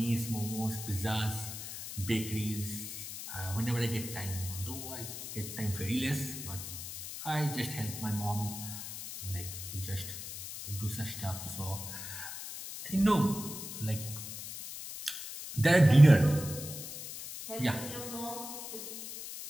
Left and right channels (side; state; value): left; noise; hiss, 9 dB below the sound